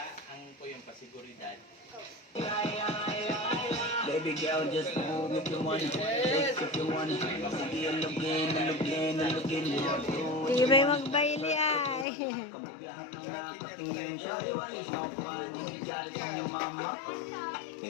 Ang po yung pasiguridad. Baby girl, just move if you want it. Take if you want it. Sige, alugin. Tibay magbaili ay. Kabugahan ng nakatingin siya. Iwan is not fun. Galit ang iyong mama.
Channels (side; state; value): right; drops out; at 12.1 s